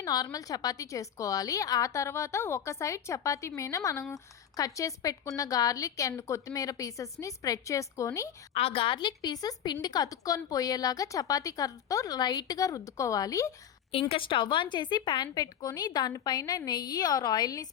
నార్మల్ చపాతీ చేసుకోవాలి. ఆ తర్వాత ఒక సైడ్ చపాతీ మీద మనం కట్ చేసి పెట్టుకున్న గార్లిక్ అండ్ కొత్తిమీర పీసెస్ని స్ప్రెడ్ చేసుకొని ఆ గార్లిక్ పీసెస్ పిండికి అతుక్కొని పోయేలాగా చపాతీ కర్రతో లైట్గా రుద్దుకోవాలి. ఇంకా స్టవ్ ఆన్ చేసి ప్యాన్ పెట్టుకొని దానిపైన నెయ్యి ఆర్ ఆయిల్ని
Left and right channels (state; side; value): quieter; right; 9.3 dB